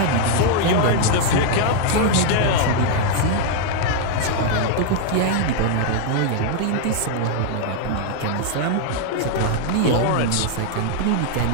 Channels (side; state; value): both; different; correlation 0.00